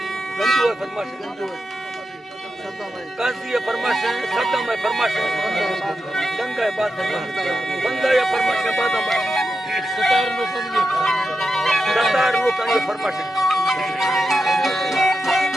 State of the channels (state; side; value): normal; both; correlation 0.89